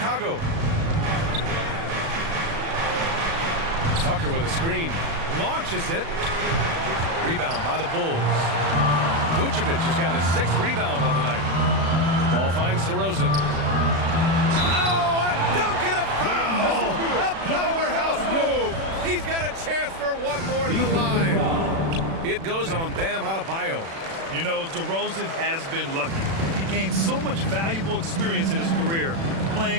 Tucker with a screen. Launches it. Rebound by the Bulls. Vucevic has got his 6th rebound on the night. Ball finds DeRozan. Oh, a dunk and a foul! A powerhouse move. He's got a chance for one more at the line. It goes on Bam Adebayo. You know, DeRozan has been lucky. He gained so much valuable experience in his career,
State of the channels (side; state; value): left; late; 36 ms